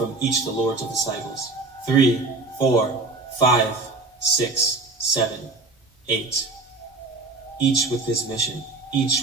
each the lords of the cycles. 3, 4, 5, 6, 7, 8. Each with his mission, each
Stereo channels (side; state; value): left; quieter; 3.5 dB